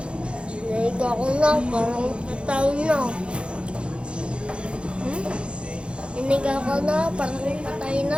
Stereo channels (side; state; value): left; late; 0.057 ms